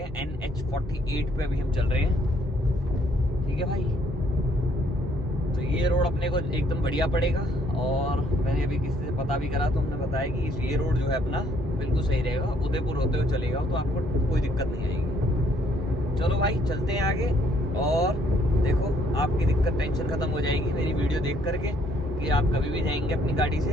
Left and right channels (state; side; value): normal; both; correlation 0.66